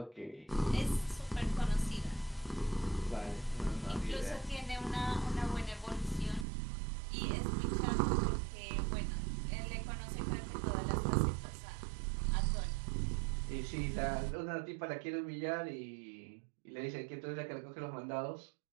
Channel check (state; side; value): drops out; left; at 6.5 s